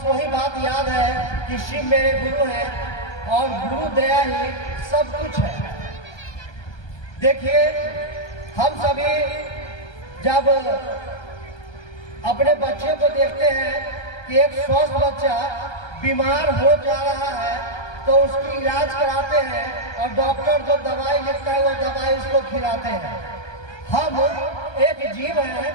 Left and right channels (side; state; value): right; late; 1.2 ms